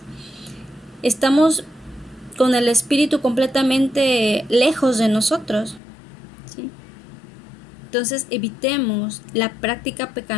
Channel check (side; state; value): right; drops out; at 5.8 s